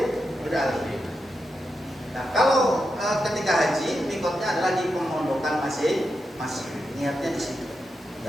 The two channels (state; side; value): normal; both; correlation 0.87